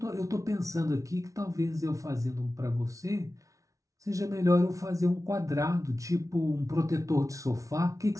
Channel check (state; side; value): late; left; 0.16 ms